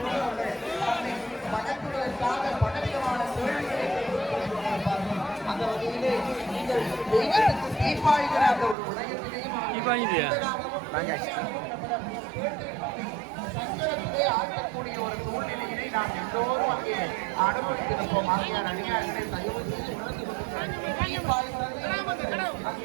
வழங்குவதற்காக பலவிதமான கேள்விகளை அந்த வகையிலே நீங்கள் தெய்வத்துக்கு தீர்ப்பாய்கிற அந்த ஒரு உலகத்திலேயும் சங்கரத்திலே ஆட்டக்கூடிய ஒரு சூழ்நிலையிலே நாம் எல்லோரும் அங்கே அனுபவித்திருப்போம். ஆகியார் அடியார்களை தயவு செய்து உணர்ந்து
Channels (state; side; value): drops out; left; at 8.8 s